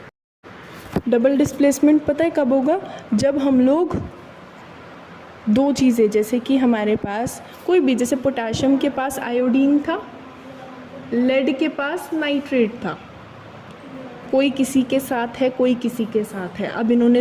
डबल डिस्प्लेसमेंट पता है कब होगा, जब हम लोग दो चीज़ें, जैसे कि हमारे पास कोई भी, जैसे पोटाशियम के पास आयोडीन था, लेड के पास नाइट्रेट था, कोई किसी के साथ है, कोई किसी के साथ है। अब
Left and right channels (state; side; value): identical; both; correlation 1.00